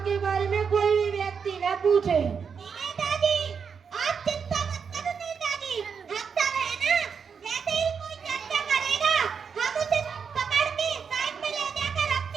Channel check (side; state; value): left; quieter; 6.3 dB